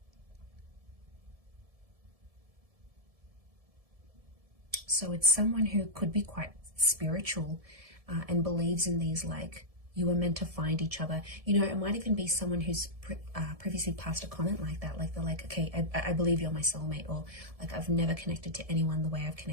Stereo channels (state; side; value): late; left; 1.7 ms